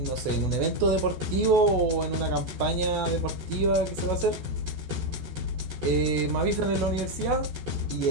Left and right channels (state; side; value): late; left; 14 ms